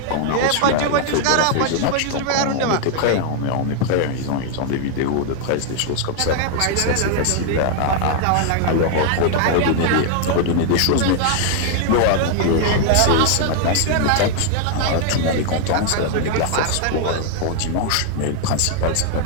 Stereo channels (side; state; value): both; different; correlation 0.00